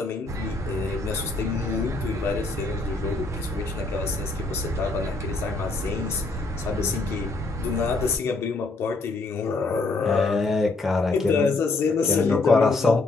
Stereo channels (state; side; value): quieter; right; 3.4 dB